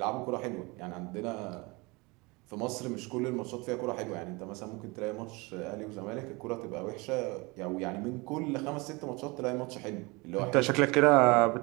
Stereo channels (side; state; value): left; quieter; 25.8 dB